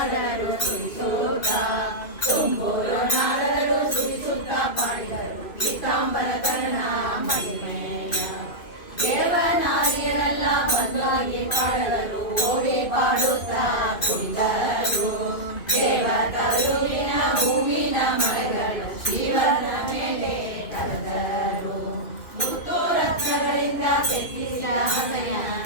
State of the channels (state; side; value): late; right; 2.5 ms